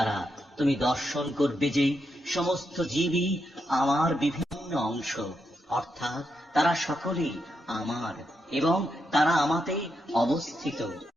তুমি দর্শন করবে যে সমস্ত জীবই আমার বিভিন্ন অংশ, অর্থাৎ তারা সকলেই আমার এবং তারা আমাতে অবস্থিত।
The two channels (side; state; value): both; normal; correlation 0.83